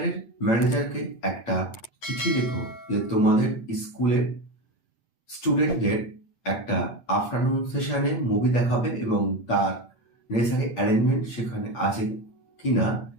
ম্যানেজারকে একটা চিঠি লেখো যে তোমাদের স্কুলের স্টুডেন্টদের একটা আফটারনুন সেশনে মুভি দেখাবে এবং তার নেসেসারি অ্যারেঞ্জমেন্ট সেখানে আছে কিনা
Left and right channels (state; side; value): late; right; 8.7 ms